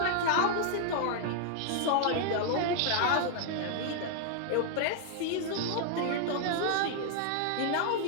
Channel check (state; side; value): different; both; correlation 0.00